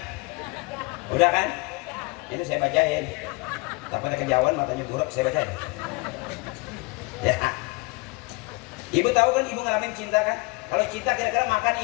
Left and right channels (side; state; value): right; quieter; 26.6 dB